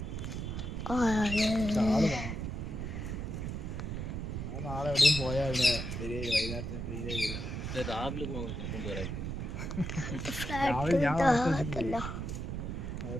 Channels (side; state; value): right; noise; rumble, 4 dB below the sound